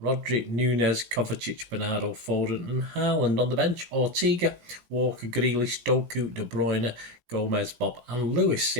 Nunez, Kovacic, Bernardo, Foden and Haaland. On the bench, Ortega, Walker, Grealish, Doku, De Bruyne, Gomez, Bob and Lewis.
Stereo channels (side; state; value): left; late; 17 ms